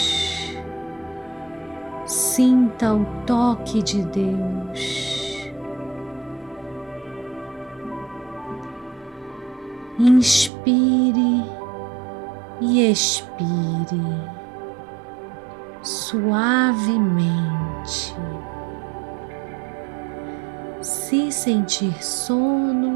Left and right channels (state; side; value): drops out; left; at 10.5 s